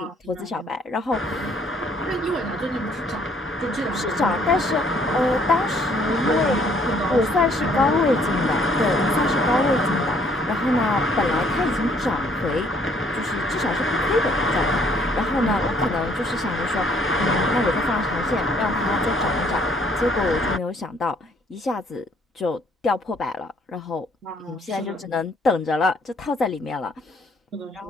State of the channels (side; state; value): both; normal; correlation 0.63